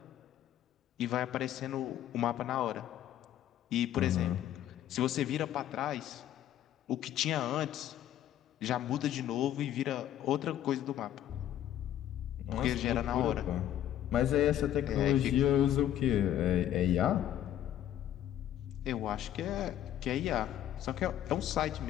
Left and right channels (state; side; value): quieter; right; 11.5 dB